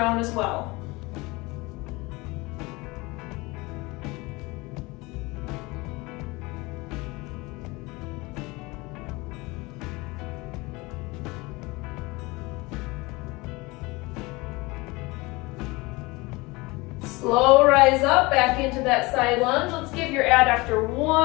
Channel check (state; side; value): quieter; right; 23.6 dB